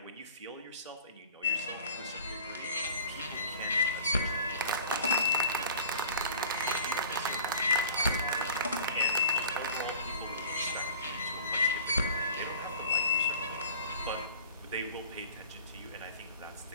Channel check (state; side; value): inverted; both; correlation -0.44